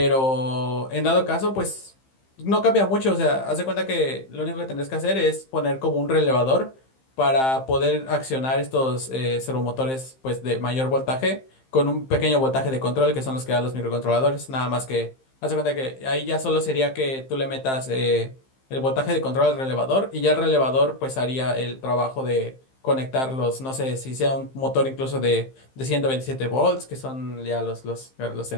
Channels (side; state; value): right; late; 15 ms